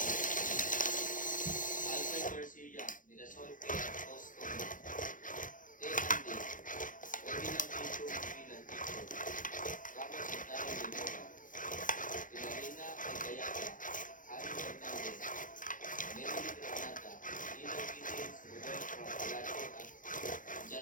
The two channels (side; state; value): right; late; 0.38 ms